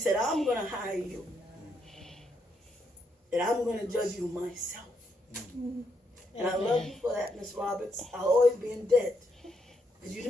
I'm going to hire you. And I'm going to judge you myself. And I love you for that, Miss Roberts. I'll always be in debt. Because you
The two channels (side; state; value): both; normal; correlation 0.77